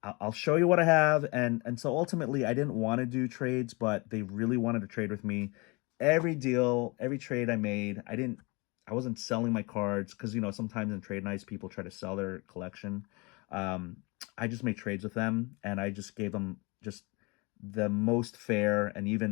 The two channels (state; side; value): quieter; right; 27.4 dB